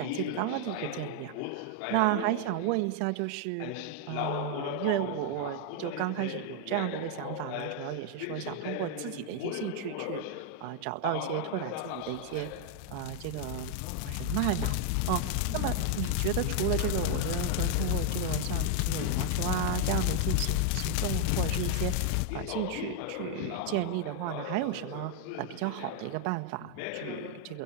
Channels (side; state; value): both; different; correlation 0.00